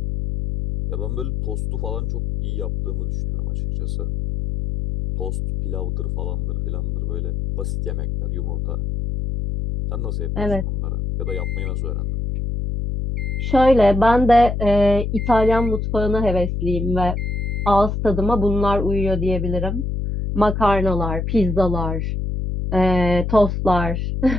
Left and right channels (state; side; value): noise; left; hum, 2 dB below the sound